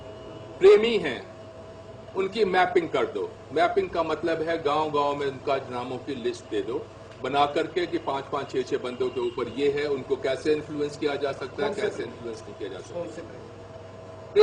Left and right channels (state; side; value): identical; both; correlation 1.00